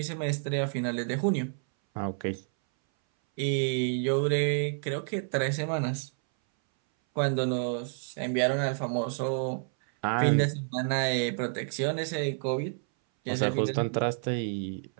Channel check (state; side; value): silent; left; 58 dB below the other